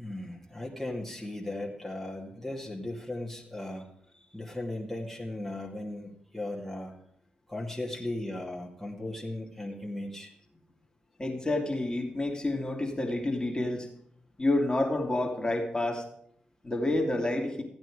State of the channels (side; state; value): both; normal; correlation 0.90